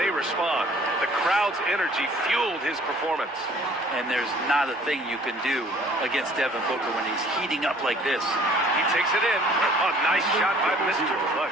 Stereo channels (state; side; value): normal; both; correlation 0.54